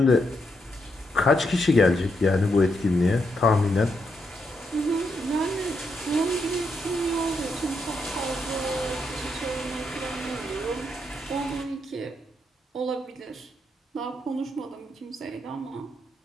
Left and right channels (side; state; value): both; normal; correlation 0.80